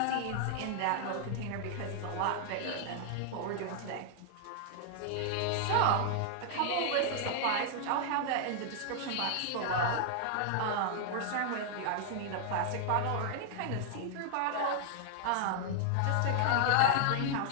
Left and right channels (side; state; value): both; different; correlation 0.00